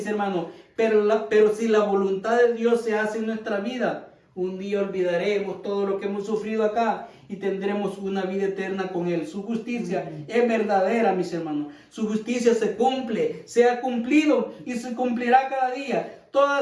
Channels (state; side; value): identical; both; correlation 1.00